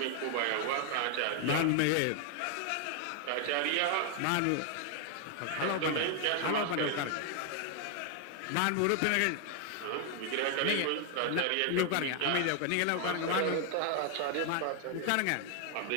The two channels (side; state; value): both; different; correlation 0.00